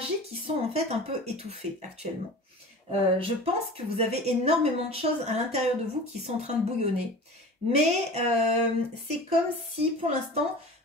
qui sont en fait un peu étouffées actuellement. Je pense que vous avez énormément de choses à l'intérieur de vous qui sont en train de bouillonner. Mais c'est comme si, pour l'instant,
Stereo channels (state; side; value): normal; both; correlation 0.37